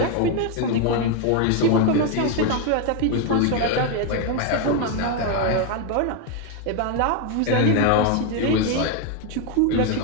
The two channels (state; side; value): different; both; correlation 0.01